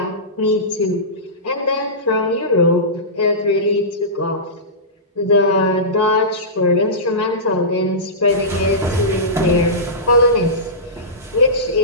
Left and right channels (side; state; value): both; normal; correlation -0.19